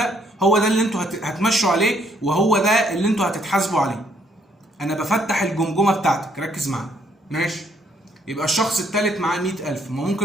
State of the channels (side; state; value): both; normal; correlation 0.68